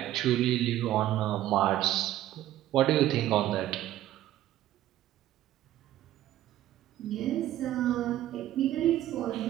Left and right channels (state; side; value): quieter; left; 13.3 dB